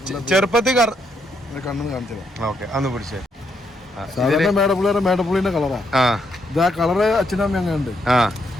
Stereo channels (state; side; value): normal; both; correlation 0.76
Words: ചെറുപ്പത്തിൽ ഓക്കെ അന്ന് പിടിച്ചേ. മേടപ്പുള്ളിന്റെ കളറാ. ഇത് ആ കളറ് അച്ഛനമ്മ അങ്ങനെ ഉണ്ട്.